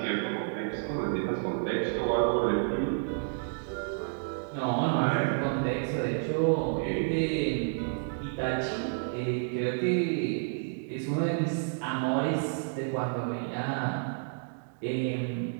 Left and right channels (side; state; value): left; silent; digital silence